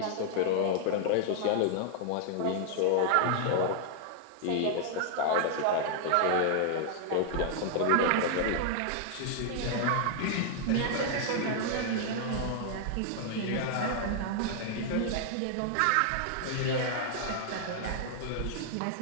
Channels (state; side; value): different; both; correlation -0.01